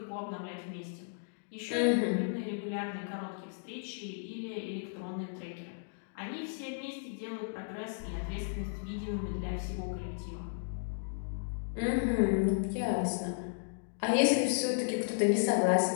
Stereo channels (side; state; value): right; silent; digital silence